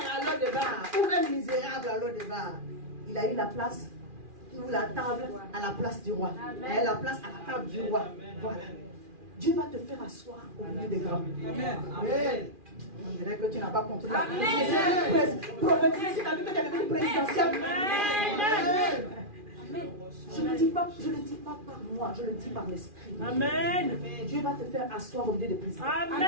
à l'eau de bar, ou même misérable à l'eau de bar, il a eu la place, ou la table à la place du roi. Il a eu la place à la table du roi. Voilà. Dieu va te faire asseoir au milieu des grands. Amen. On dirait que tu n'as pas compris. Amen. Prophétiser, tu as vu que tu es devenu présidentiel. Amen. Je ne le dis pas par moi, je le dis par l'esprit. Amen. Dieu va te faire asseoir au milieu des présidents. Amen.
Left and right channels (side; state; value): left; late; 2.4 ms